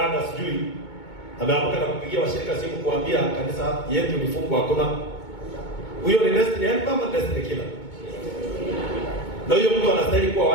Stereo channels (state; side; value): late; right; 2.2 ms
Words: sijui ameamka na kupigia washirika simu kuambia kanisa yetu ni fungu hakuna. Huyo ni destiny helper ama destiny killer? Na huyo mtu anastahili kuwa